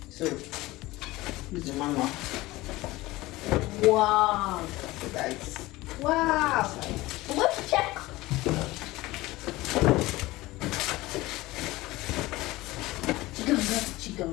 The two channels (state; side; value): quieter; right; 19.2 dB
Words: So, use the manual. Wow. So guys, Wow. Let's check.